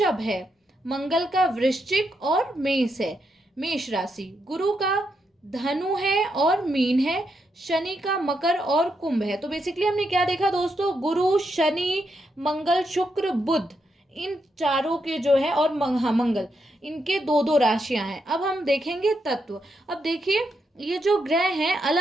है, मंगल का वृश्चिक और मेष है, मेष राशि, गुरु का धनु है और मीन है, शनि का मकर और कुंभ है। तो बेसिकली हमने क्या देखा दोस्तों, गुरु, शनि, मंगल, शुक्र, बुध, इन चारों के जो है, और मंगल, इनके 2 राशियां हैं। अब हम देखेंगे तत्व। अब देखिए ये जो ग्रह हैं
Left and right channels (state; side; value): normal; both; correlation 0.82